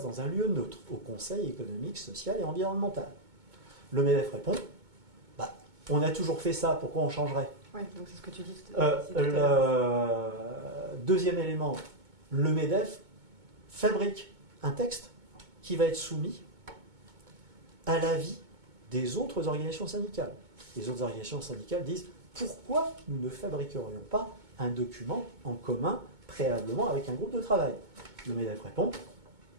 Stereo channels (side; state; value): left; late; 2.2 ms